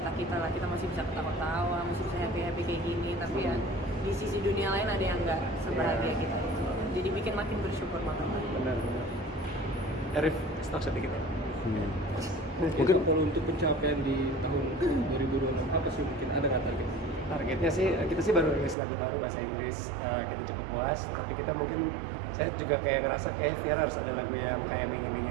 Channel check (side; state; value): left; drops out; at 18.8 s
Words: lah. Kita masih bisa ketawa-tawa, masih bisa happy kayak gini, tapi ya di sisi dunia lain ada yang nggak sebahagia kita itu. Jadi bikin makin bersyukur banget. Benar. Arif, stok sedikit ya. Mungkin kalau untuk pencapaian di tahun 2026 apa sih, mungkin ada nggak target? Targetnya sih, kita sih baru rilis lagu baru bahasa Inggris, kita cukup puas. Tapi kita mungkin, saya juga kayak ngerasa kayak Viera harus ada lagu yang kayak